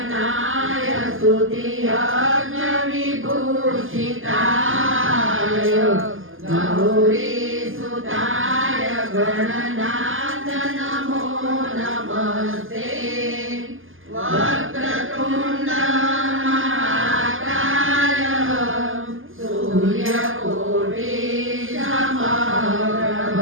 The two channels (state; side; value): late; left; 0.59 ms